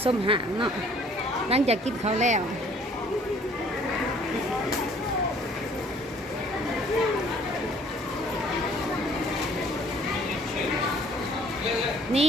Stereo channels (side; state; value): both; normal; correlation 0.56